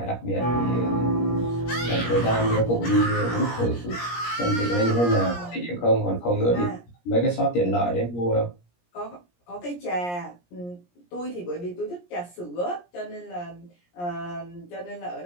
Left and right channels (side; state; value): right; late; 17 ms